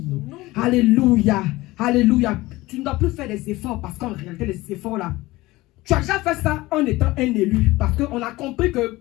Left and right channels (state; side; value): quieter; right; 19.5 dB